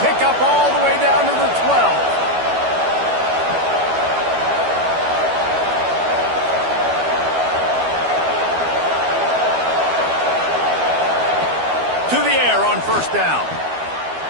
pickup all the way down to the 12. To the air on first down.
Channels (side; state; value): left; late; 12 ms